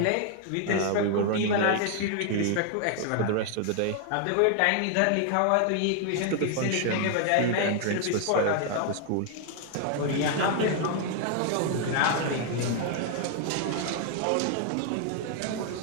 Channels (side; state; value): both; different; correlation 0.00